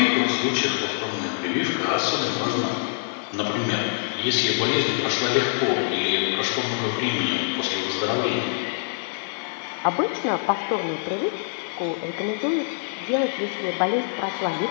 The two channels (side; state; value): right; silent; digital silence